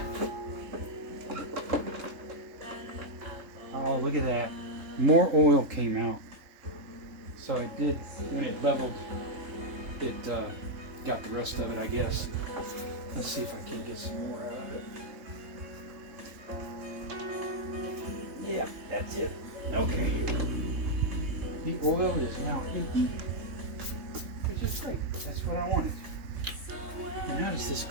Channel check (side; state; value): left; late; 3.6 ms